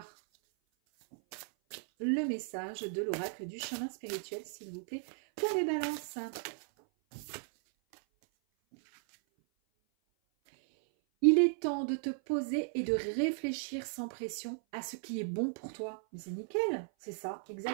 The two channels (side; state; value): left; silent; 54 dB below the other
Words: le message de l'oracle du chemin spirituel, s'il vous plaît, pour les balances. Il est temps de te poser et de réfléchir sans pression à ce qui est bon pour toi. Mais c'est nickel, c'est ça,